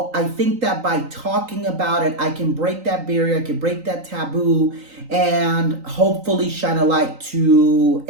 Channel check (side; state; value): left; late; 3.9 ms